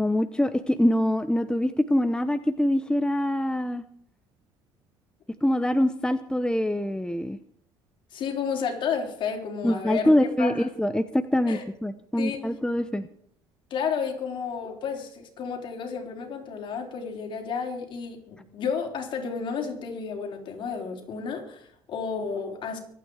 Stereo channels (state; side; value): normal; both; correlation 0.87